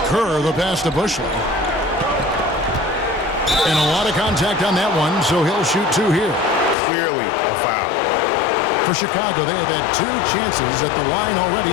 Kerr, the pass to Bushley. And a lot of contact on that one, so he'll shoot 2 here. Clearly a foul. For Chicago, they have had 2 chances at the line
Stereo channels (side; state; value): right; drops out; at 6.8 s